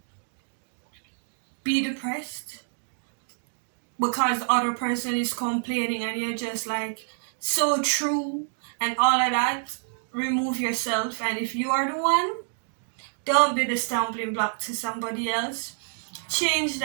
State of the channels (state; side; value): silent; left; digital silence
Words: be depressed because the other person is complaining and you're just like, so true and all of that, remove yourself. And if you are the one, don't be the stumbling block to somebody else. Change